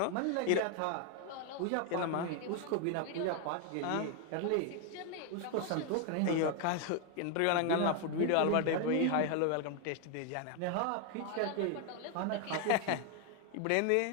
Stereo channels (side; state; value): both; different; correlation 0.00